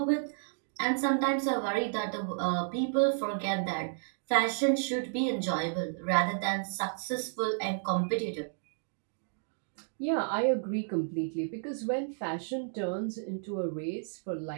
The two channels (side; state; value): left; silent; digital silence